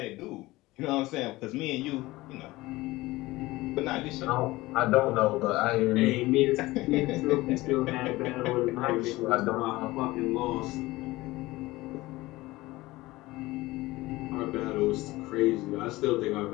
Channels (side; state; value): right; quieter; 19.4 dB